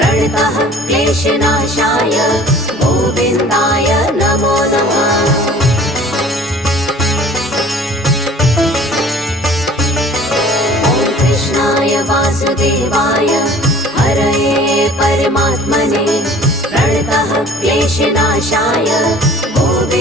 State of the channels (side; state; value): both; normal; correlation 0.48